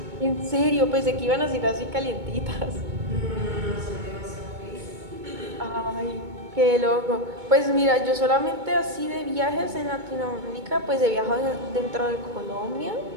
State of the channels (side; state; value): left; late; 2.2 ms